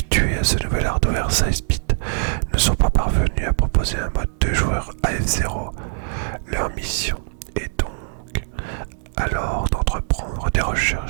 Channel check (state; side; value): silent; left; digital silence